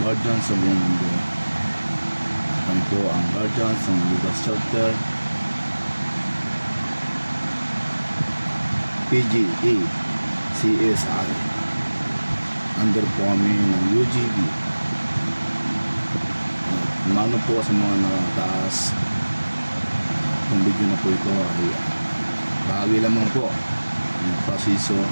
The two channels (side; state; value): both; inverted; correlation -1.00